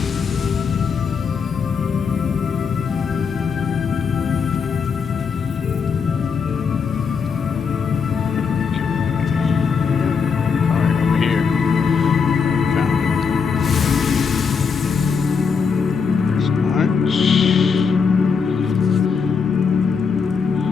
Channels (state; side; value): quieter; right; 5.8 dB